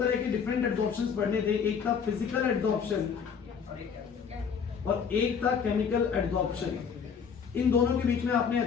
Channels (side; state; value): right; quieter; 6.6 dB